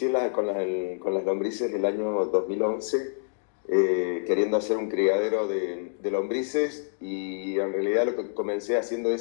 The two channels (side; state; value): right; silent; digital silence